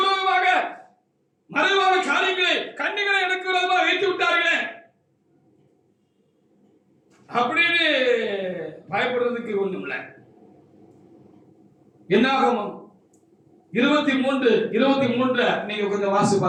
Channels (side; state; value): both; identical; correlation 1.00